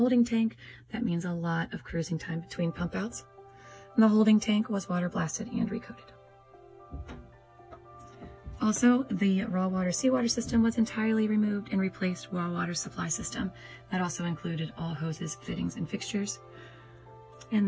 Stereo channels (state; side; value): identical; both; correlation 1.00